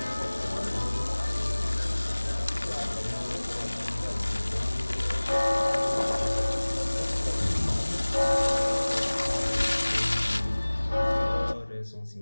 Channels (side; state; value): both; inverted; correlation -1.00